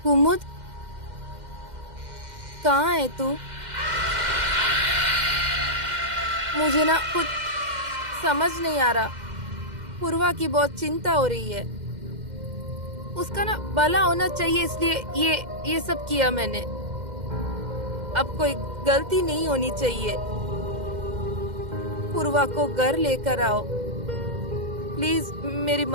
कुमुद, कहाँ है तू? मुझे ना कुछ समझ नहीं आ रहा। पूर्वा की बहुत चिंता हो रही है। उसका ना भला होना चाहिए, इसलिए ये सब किया मैंने। अब कोई गलती नहीं होनी चाहिए। पूर्वा को घर लेकर आओ, प्लीज मेरी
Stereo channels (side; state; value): left; late; 2.1 ms